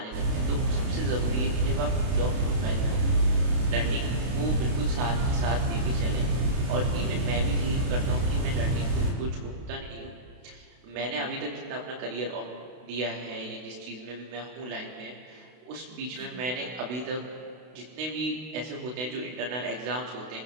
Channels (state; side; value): late; left; 32 ms